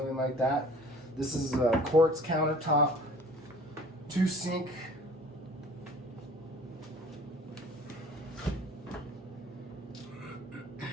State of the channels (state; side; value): normal; both; correlation 0.48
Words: like that. This is a quartz countertop, 2-sink.